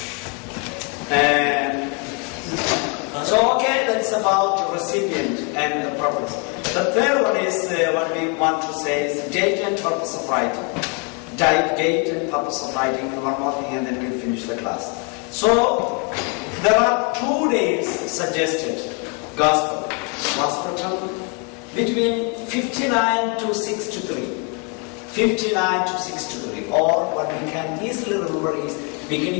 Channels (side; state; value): right; quieter; 33.0 dB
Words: that's about the recipient and the purpose. The third one is what we want to say is date and purpose of writing. type, date, and purpose of writing, one more thing, and then we'll finish the class. So, there are 2 dates suggested. Gospel was written between 59 to 63. 59 to 63, or what we can easily remember is